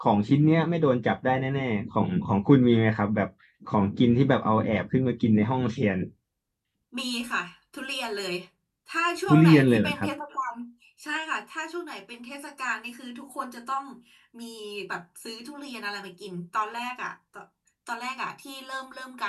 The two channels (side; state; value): both; identical; correlation 1.00